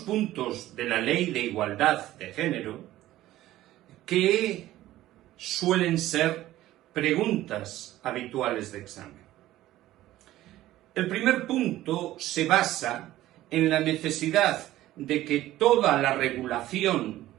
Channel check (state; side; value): quieter; left; 15.0 dB